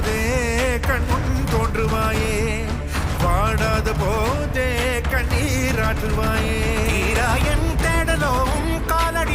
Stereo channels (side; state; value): both; identical; correlation 1.00